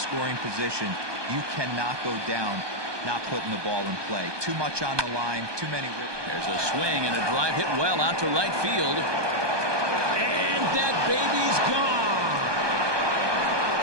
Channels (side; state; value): left; late; 1.2 ms